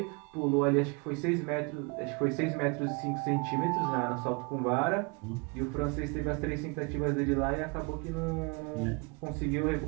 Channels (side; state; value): left; quieter; 31.3 dB